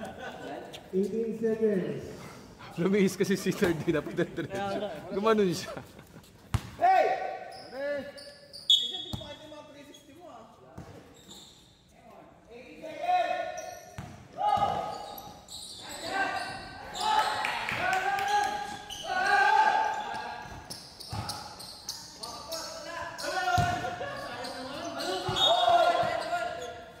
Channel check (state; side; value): identical; both; correlation 1.00